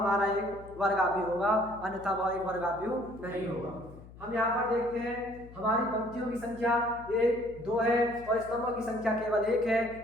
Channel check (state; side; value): noise; left; hum, 18 dB below the sound